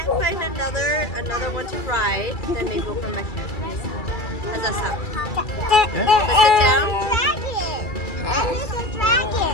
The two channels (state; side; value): late; right; 2.3 ms